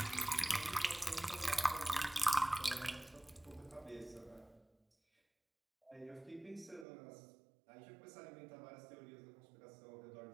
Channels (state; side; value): drops out; left; at 6.9 s